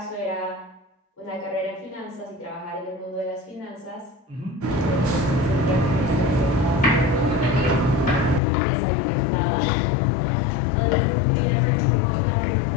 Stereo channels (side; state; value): right; drops out; at 8.4 s